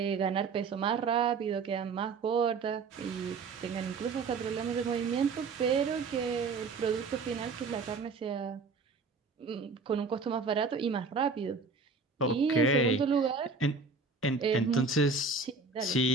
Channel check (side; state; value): left; quieter; 4.4 dB